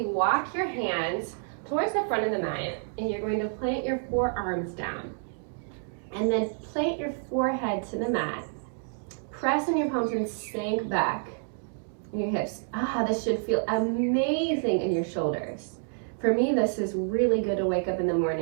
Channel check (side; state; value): left; silent; digital silence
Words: walk your hands towards the front of the mat, and you're going to plant your forearms down. And then plant your forehead to the mat. Press on your palms and sink back in your hips. This should feel amazing in your shoulders. For me, this is really good to wake up in the